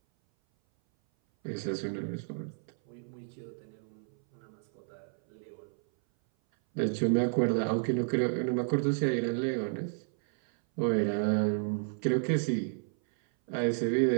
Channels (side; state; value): left; silent; 57 dB below the other